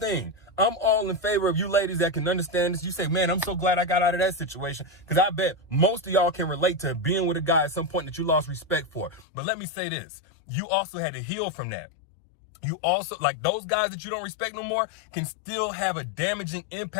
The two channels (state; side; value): drops out; right; at 9.2 s